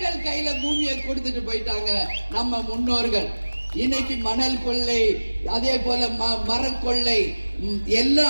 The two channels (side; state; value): both; inverted; correlation -1.00